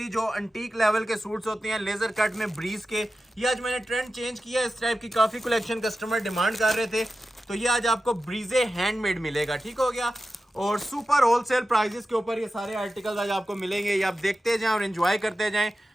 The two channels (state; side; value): normal; both; correlation 0.93